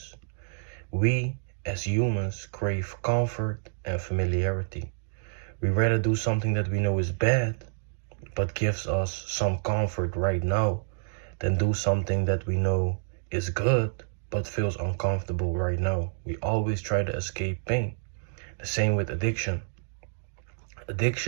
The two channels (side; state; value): left; silent; digital silence